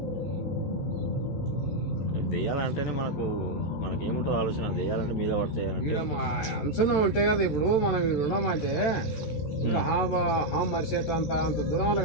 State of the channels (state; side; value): late; right; 13 ms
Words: దెయ్యాలంటేనే మనకేముంటో ఆలోచన. దెయ్యాలంటే మీద పడతాయి అంచనా ఉంటాయి కదా. ఇప్పుడు మనం ఉన్నామంటే ఇంకా మరిసేట అంత దూరం